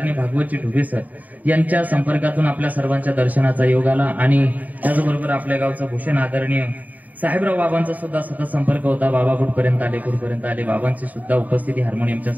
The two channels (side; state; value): left; late; 0.077 ms